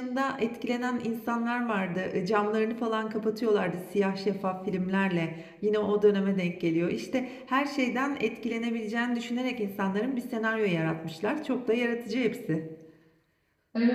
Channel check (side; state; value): both; identical; correlation 1.00